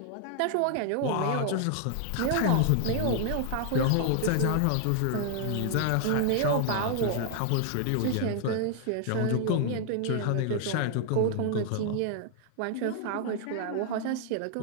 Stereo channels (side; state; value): both; different; correlation 0.00